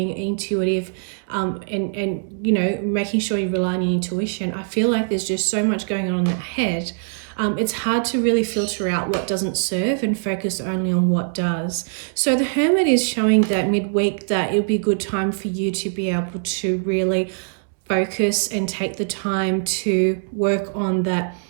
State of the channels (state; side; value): silent; left; digital silence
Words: intuitive and you know, making sure you rely on your intuition, I feel like there's just so much going on in that head. It's hard to really filter out what doesn't serve and focus only on what does. So the Hermit is showing that midweek that it'll be a good time for you to be able to really focus and take the time to work on that,